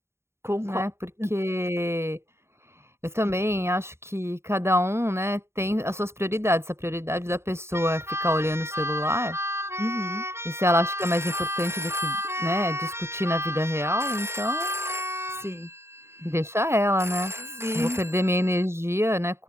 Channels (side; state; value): left; late; 0.13 ms